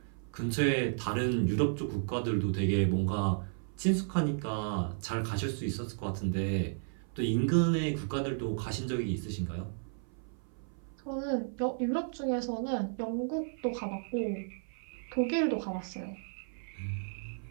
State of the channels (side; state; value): left; silent; 55 dB below the other